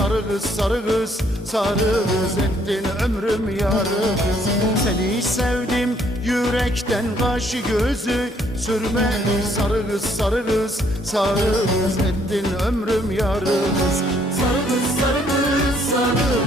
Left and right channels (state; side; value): normal; both; correlation 0.67